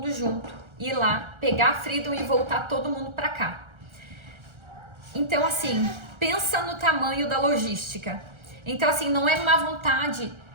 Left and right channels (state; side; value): late; left; 1.3 ms